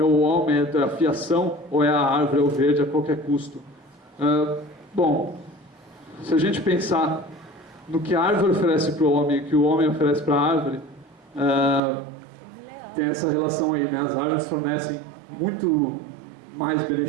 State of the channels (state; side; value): drops out; left; at 11.8 s